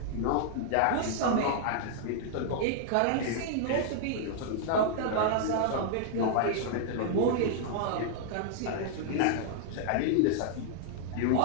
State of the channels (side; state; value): both; different; correlation -0.01